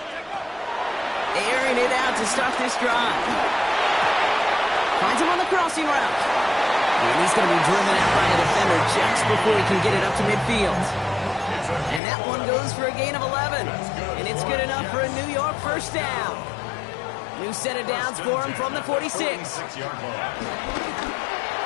Airing it out to start this drive. Finds him on the crossing route. And he's going to be driven out by a defender just before he can get it up to midfield. And that one goes for a gain of 11. And it's good enough for a New York 1st down. New set of downs for him from the 46.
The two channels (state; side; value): drops out; right; at 12.0 s